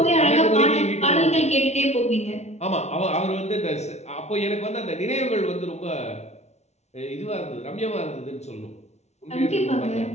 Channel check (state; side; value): late; right; 0.32 ms